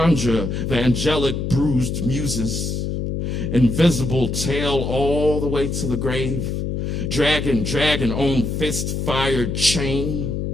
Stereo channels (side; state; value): left; noise; hum, 2 dB below the sound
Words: the angelic bruised muses, invisible tail all the way to the grave, dragging on fist-fired chain.